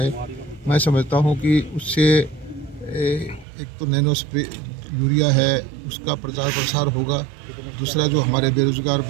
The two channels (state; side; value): drops out; left; at 3.5 s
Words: मैं समझता हूँ कि उससे एक तो नैनो स्प्रे यूरिया है उसका प्रचार प्रसार होगा, दूसरा जो हमारे बेरोजगार